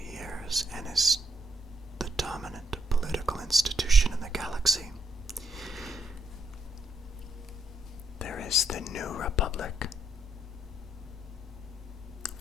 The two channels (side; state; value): both; normal; correlation 0.75